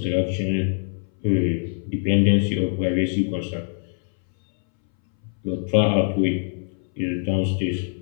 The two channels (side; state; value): right; silent; 61 dB below the other